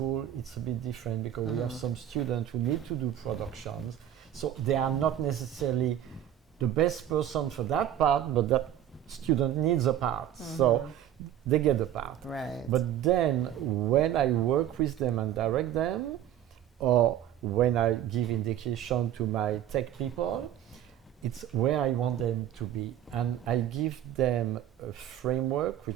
it's a bit different, because we have some students who need to do productions, so they are not necessarily the best person for that part, but that student needs a part, so they get the part. Right. But then when I work with them and direct them, or when I give indication to my tech people, it's where I want them to be, and I give them a framework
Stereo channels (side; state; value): left; quieter; 11.1 dB